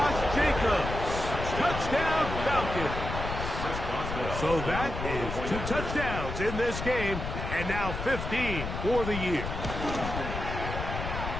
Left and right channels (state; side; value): noise; left; rumble, 5 dB below the sound